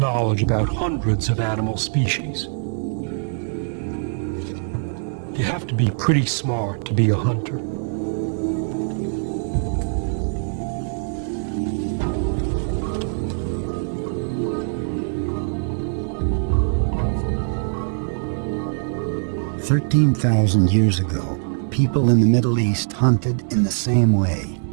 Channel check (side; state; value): left; silent; 64 dB below the other